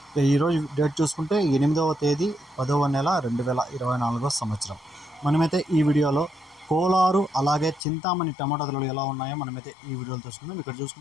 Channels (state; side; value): drops out; right; at 7.8 s